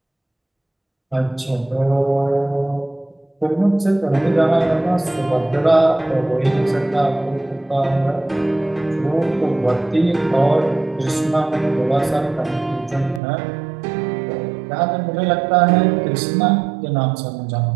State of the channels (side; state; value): left; drops out; at 13.2 s